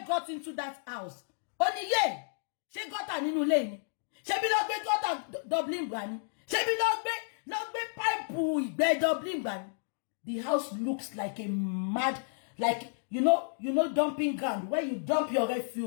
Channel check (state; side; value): silent; right; digital silence